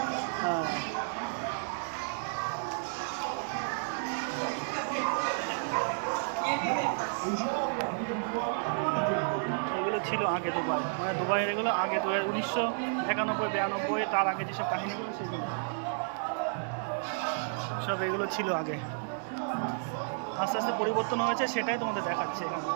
হ্যাঁ, এগুলো ছিল আগে দুবাই, মানে দুবাইয়ের এগুলো আগে 1991-92, তার আগে যেসব কাহিনীগুলো সেগুলো সব এগুলো ছিল আগে। আস্তে আস্তে পরিবর্তন হয়েছে, সেটাই তোমাদের দেখাচ্ছে এখন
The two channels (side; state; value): left; silent; digital silence